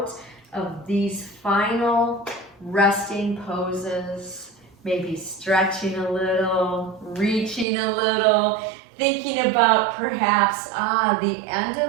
of these final resting poses. Maybe stretching a little, reaching a little, thinking about perhaps, the end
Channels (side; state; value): left; drops out; at 7.7 s